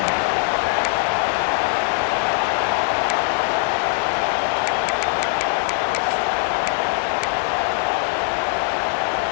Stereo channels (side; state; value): right; silent; 65 dB below the other